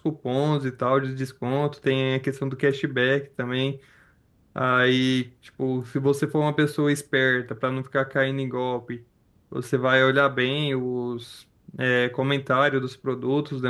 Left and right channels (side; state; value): both; identical; correlation 1.00